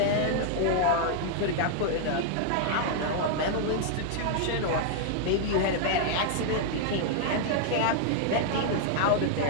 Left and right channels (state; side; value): different; both; correlation -0.01